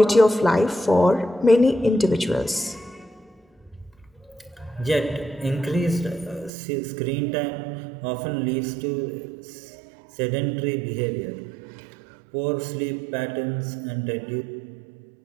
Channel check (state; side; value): drops out; left; at 6.5 s